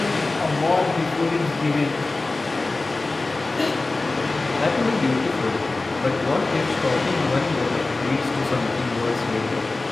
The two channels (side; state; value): right; quieter; 3.3 dB